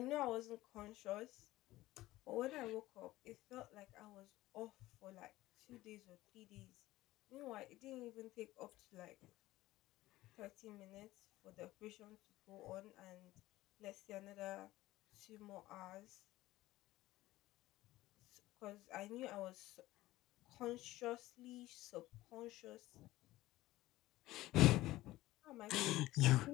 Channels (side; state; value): right; quieter; 17.0 dB